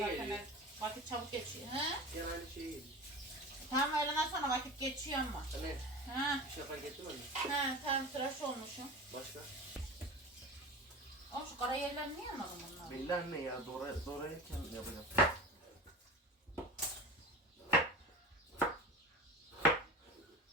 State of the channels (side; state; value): both; normal; correlation 0.32